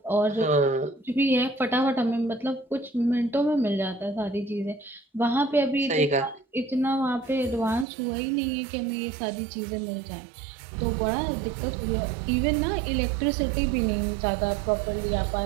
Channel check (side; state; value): left; drops out; at 7.9 s